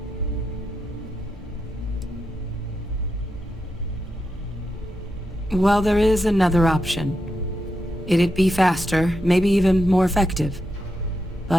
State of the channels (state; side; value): normal; both; correlation 0.85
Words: Well, there is another option. It'd be faster, maybe even more effective.